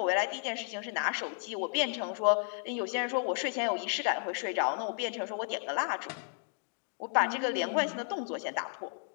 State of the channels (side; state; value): right; silent; 56 dB below the other